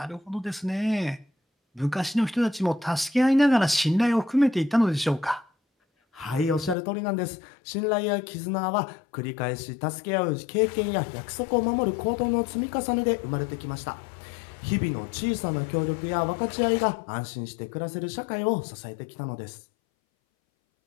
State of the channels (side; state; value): right; drops out; at 6.8 s